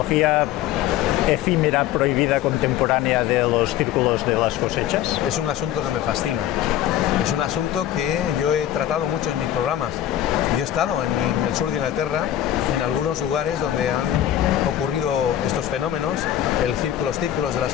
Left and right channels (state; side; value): quieter; right; 11.9 dB